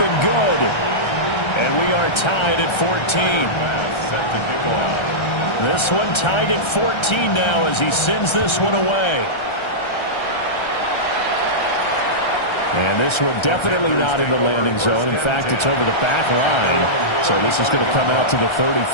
good. And we are tied at 14. Set to kick off. This one tied at 14 now as he sends this one away. And this one definitely not in the landing zone. In fact, it's over the back line. So this is going to come out to the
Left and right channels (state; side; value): late; right; 1.3 ms